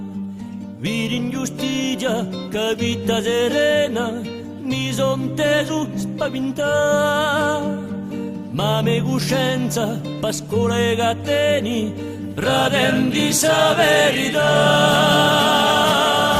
Vidi ingiustizia che vita serena, mi son teso spaventà. Ma me coscienza, pascola e gatteni, radendi sa verità.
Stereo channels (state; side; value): identical; both; correlation 1.00